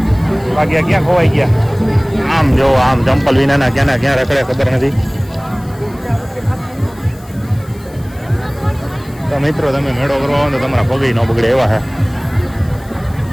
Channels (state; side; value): noise; left; hiss, 25 dB below the sound